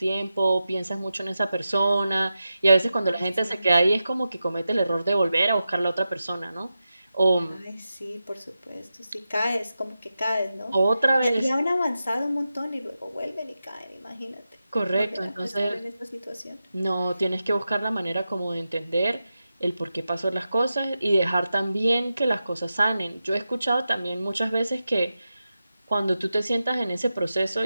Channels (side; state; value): both; inverted; correlation -0.91